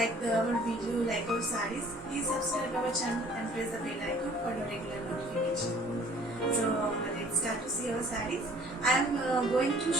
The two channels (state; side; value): normal; both; correlation 0.54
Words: our video, like our sarees, please subscribe our channel and press the bell icon for your regular notification. So let's start to see our sarees. I am going to